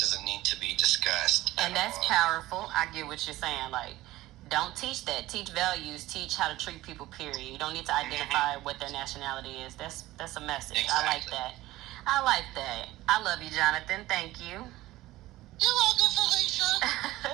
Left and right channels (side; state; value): left; quieter; 17.0 dB